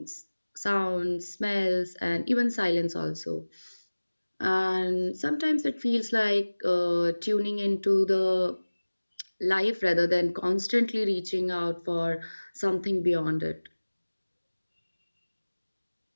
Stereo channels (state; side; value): inverted; both; correlation -1.00